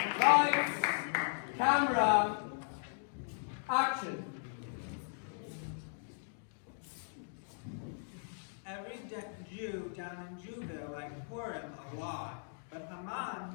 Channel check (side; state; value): right; silent; digital silence